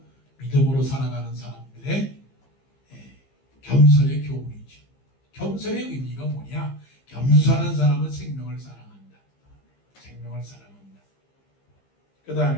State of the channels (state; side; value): late; right; 15 ms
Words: 믿음으로 살아가는 사람들 사람들의 겸손의 교훈이죠. 겸손의 의미가 뭐냐? 겸손한 사람은 생명을 사랑한다. 생명을 사랑한다. 그